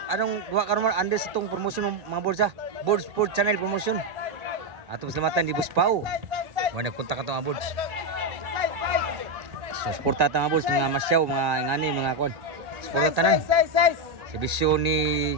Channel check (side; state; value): left; late; 1.9 ms